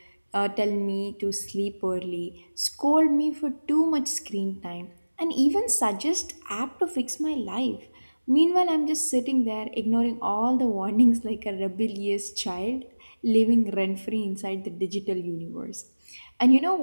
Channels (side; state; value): both; inverted; correlation -1.00